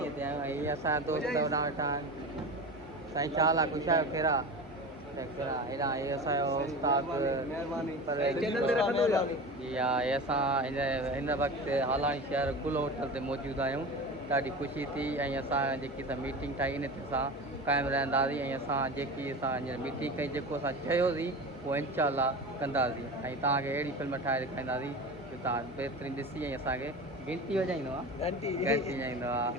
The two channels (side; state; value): both; normal; correlation 0.30